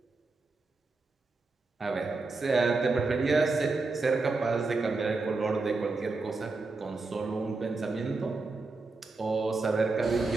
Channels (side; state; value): left; quieter; 3.7 dB